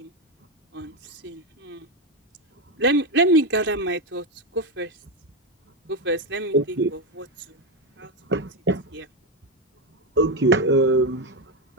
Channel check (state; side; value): normal; both; correlation 0.10